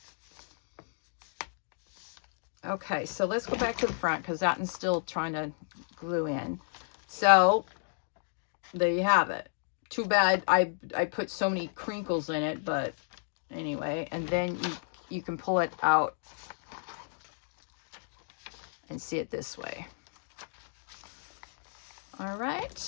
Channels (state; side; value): silent; right; digital silence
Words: Okay, so let's go back to the front because that one's still trying to glue in. So there you have it. Too bad I put so many crinkles in it, but anyway. And then you can pull it out and see it this way. All right,